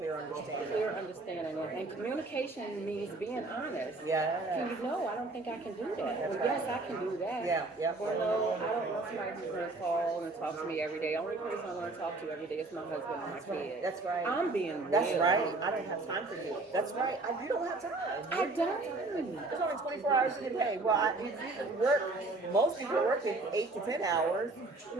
understanding. Clear understanding. And communication means being honest. Yeah. Can you know, I don't think I can do that. Or yes, I can do that. Yeah. Or no, I don't want somebody who's going to call and talk to me every day. Only person I want to talk to every day is my husband and my kid. That's right. I'm being real. That's right. I don't have time for you. That's right. You don't have time. I don't. There's only 24 hours in a day. Well, you work. Most people work 8 to 10 hours.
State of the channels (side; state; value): left; quieter; 3.3 dB